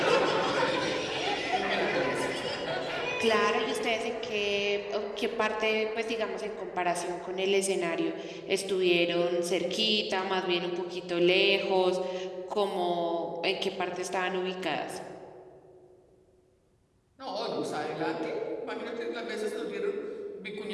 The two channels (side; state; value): both; identical; correlation 1.00